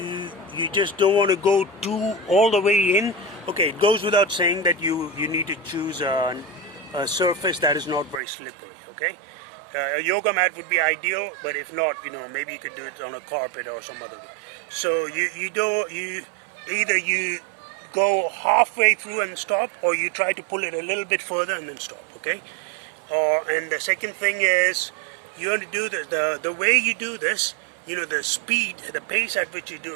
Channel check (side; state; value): left; drops out; at 8.2 s